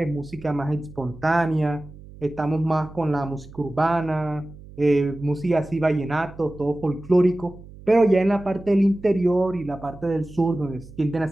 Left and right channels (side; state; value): right; noise; hum, 18 dB below the sound